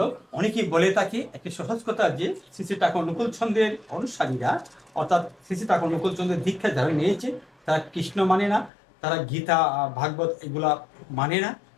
অনেকেই বলে থাকে একটি সহজ কথা যে শ্রী শ্রী ঠাকুর অনুকূল চন্দ্রের অনুসারীরা, অর্থাৎ শ্রী শ্রী ঠাকুর অনুকূল চন্দ্রের দীক্ষা যারা নিয়েছে তারা কৃষ্ণ মানে না, তারা গীতা ভাগবত এগুলা মানে না,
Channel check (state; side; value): drops out; right; at 8.7 s